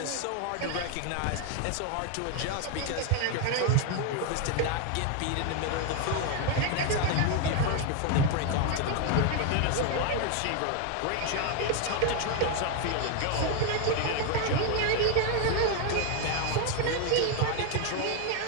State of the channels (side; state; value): both; different; correlation 0.01